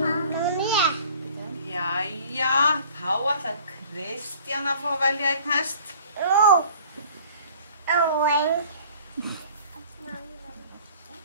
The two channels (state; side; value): inverted; both; correlation -0.50